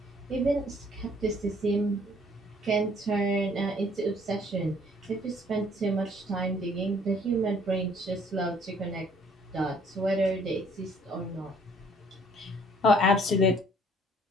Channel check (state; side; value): normal; both; correlation 0.60